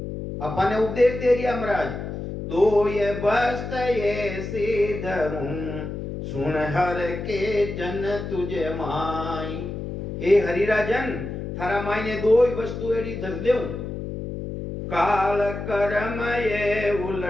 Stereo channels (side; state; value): left; noise; hum, 6 dB below the sound